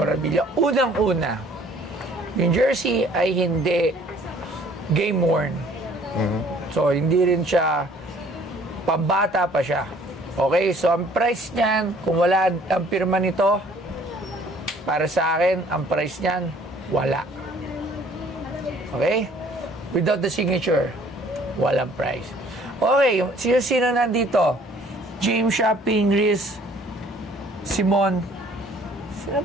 Unang-una, yung jersey ay hindi game worn. So, hindi rin siya pambata pa siya. Okay, so ang price niyan, kung wala ang pirma nito, para sa akin, ang price niyan, wala. Okay? Without the signature, walang price. Okay, sino nandito? James Yap, Pingris, Simon. Sino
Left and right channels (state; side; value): normal; both; correlation 0.56